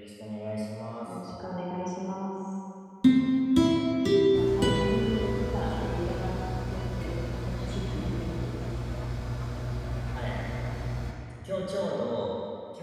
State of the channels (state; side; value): identical; both; correlation 1.00